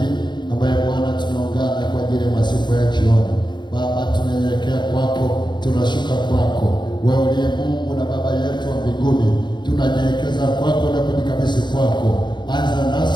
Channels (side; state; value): right; late; 0.22 ms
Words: ambaye Bwana tunaungana kwa ajili ya masifu ya jioni. Baba, tunanyenyekea kwako, tunashuka kwako, wewe uliye Mungu na Baba yetu wa mbinguni. Tunanyenyekeza kwako na kujikabidhi kwako. Anza